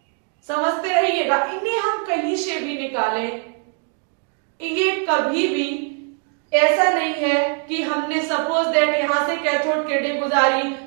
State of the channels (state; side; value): quieter; left; 39.2 dB